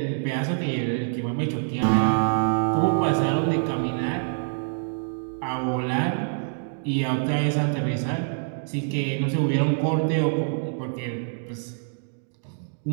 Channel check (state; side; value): silent; left; digital silence